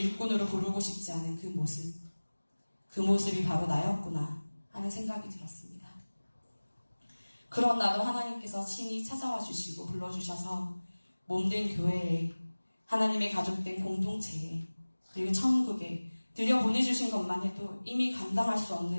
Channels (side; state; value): both; inverted; correlation -1.00